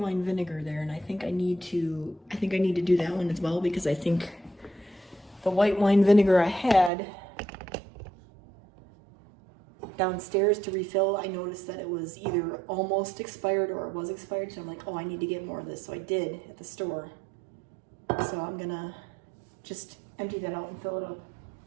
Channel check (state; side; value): drops out; left; at 6.9 s